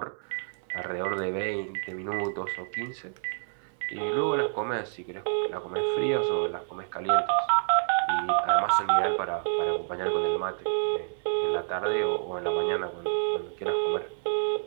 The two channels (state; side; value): silent; left; 59 dB below the other